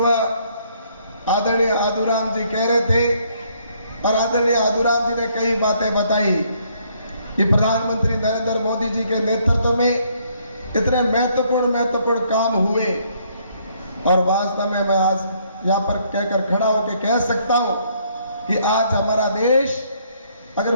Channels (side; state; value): both; inverted; correlation -0.68